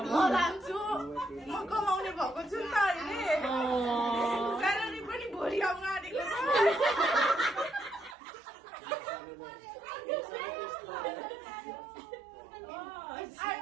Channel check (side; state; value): left; drops out; at 8.2 s